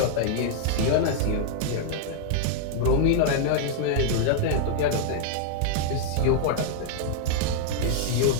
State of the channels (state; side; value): different; both; correlation -0.01